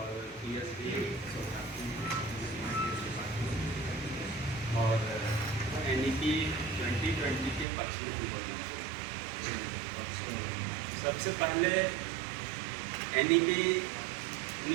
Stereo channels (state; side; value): drops out; left; at 7.7 s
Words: और NEP 2020 के पक्ष में भी बोलना। सबसे पहले NEP